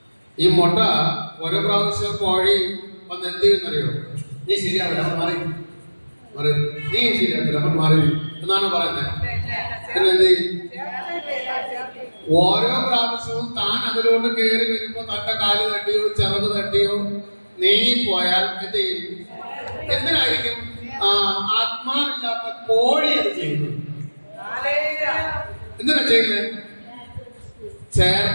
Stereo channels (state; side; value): inverted; both; correlation -1.00